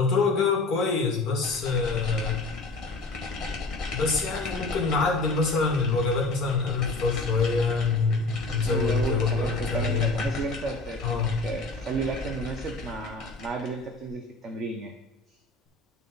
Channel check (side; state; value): right; quieter; 3.2 dB